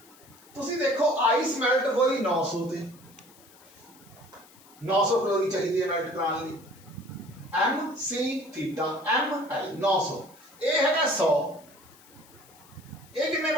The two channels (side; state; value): left; noise; hiss, 25 dB below the sound